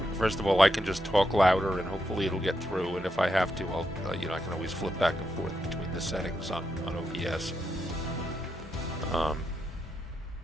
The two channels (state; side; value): normal; both; correlation 0.83